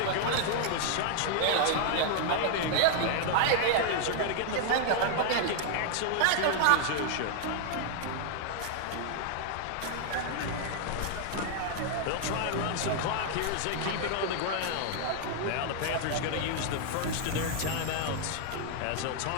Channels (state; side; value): different; both; correlation 0.00